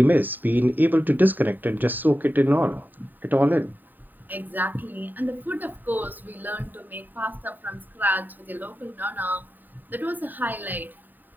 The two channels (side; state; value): left; late; 0.089 ms